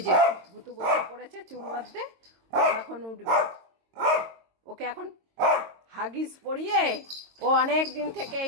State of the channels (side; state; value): left; late; 22 ms